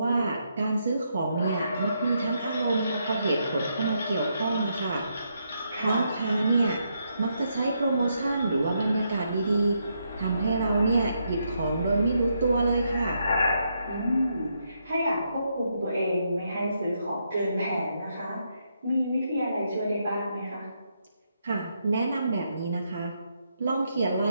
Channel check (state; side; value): inverted; both; correlation -0.79